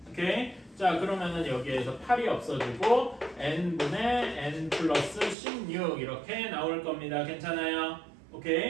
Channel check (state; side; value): drops out; left; at 5.4 s